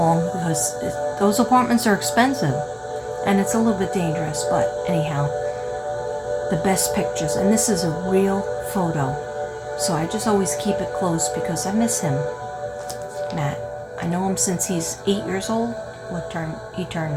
because those apartments are expensive. And it's a little bit dangerous, but anyhow, the best pictures. And this is a real photo. So I just always keep it close because I miss him, Matt. I know him since he's 8 years old. He turned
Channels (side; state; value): both; identical; correlation 1.00